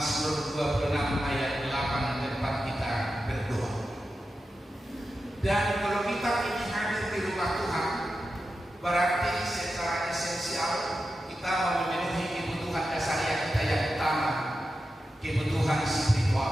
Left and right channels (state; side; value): normal; both; correlation 0.91